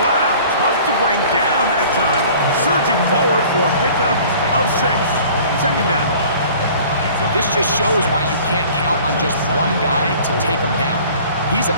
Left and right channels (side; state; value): both; inverted; correlation -0.48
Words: wow, tough to bring down that time. Surging forward for a pickup of 6. Second down. This just shows why you can't count on just one guy to take him down. He's a